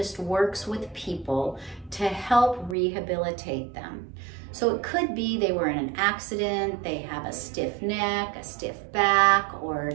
works with people to help rehabilitate them. So it could be they were in an accident, they have a stiff neck, a stiff back, or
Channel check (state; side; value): drops out; left; at 2.8 s